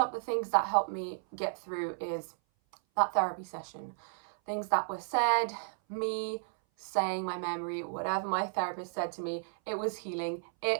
the things that helped me get through is that therapy session. Things that were said, me saying my memory, whatever my therapist said to me, it was healing.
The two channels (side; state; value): left; silent; 56 dB below the other